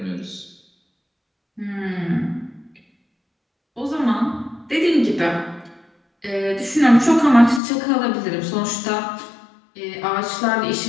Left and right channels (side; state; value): right; drops out; at 7.6 s